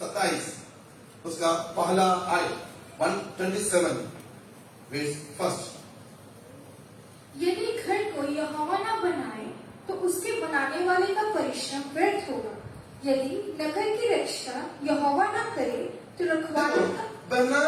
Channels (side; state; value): both; identical; correlation 1.00